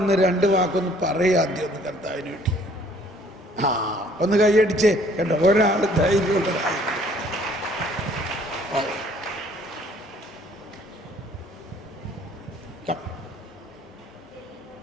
2 വാക്കൊന്ന് പറയുക ആദ്യം, ഒന്ന് കർത്താവിന് വേണ്ടി. ഒന്ന് കൈയടിച്ചേ കേട്ടോ, ഒരാൾ ധൈര്യമുള്ളതായി.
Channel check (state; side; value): normal; both; correlation 0.59